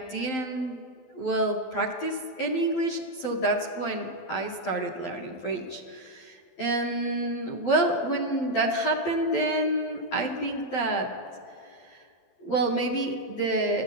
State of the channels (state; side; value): late; right; 12 ms